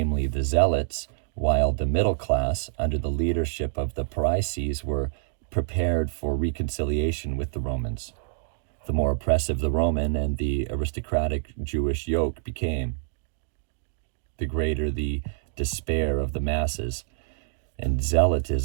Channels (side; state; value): left; silent; digital silence